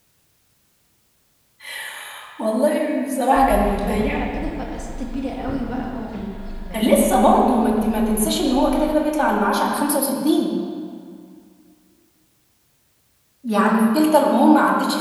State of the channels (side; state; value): both; identical; correlation 1.00